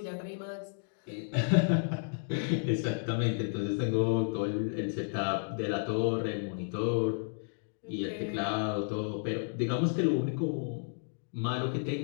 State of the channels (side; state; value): right; silent; digital silence